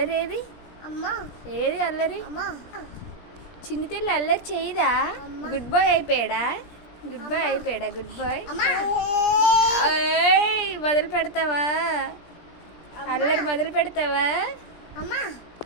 ఏది అల్లరి? చిన్ని తెల్లి అల్లరి చేయదా? గుడ్ బాయ్ అయిపోయాడా? గుడ్ బాయ్ అయిపోయాడా? గుడ్ బాయ్ మొదలు పెడతావా? అల్లరి మొదలు పెడతావా?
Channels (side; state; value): right; late; 17 ms